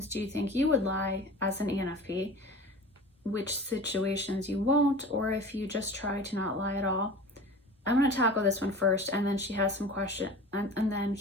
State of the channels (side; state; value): both; normal; correlation 0.37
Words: do you think you would lie as an ENFP? Which situations you won't, or if you just try to not lie at all? I'm going to tackle this one first, and then she has some question, and then